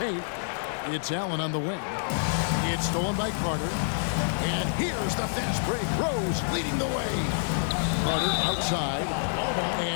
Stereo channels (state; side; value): silent; right; digital silence